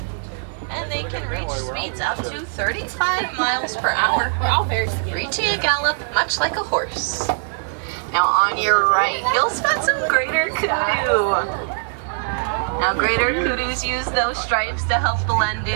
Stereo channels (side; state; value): left; silent; digital silence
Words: and they can reach speeds up to 35 miles per hour, reaching a gallop much like a horse. Now on your right, you'll spot some greater kudu. Now greater kudus use those stripes to help blend